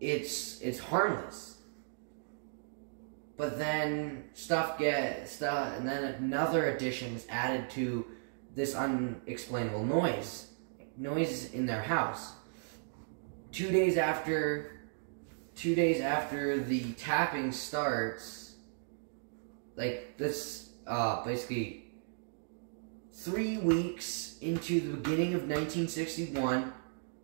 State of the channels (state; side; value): silent; left; digital silence